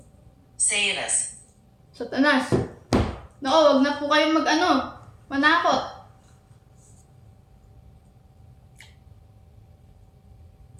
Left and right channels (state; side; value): identical; both; correlation 1.00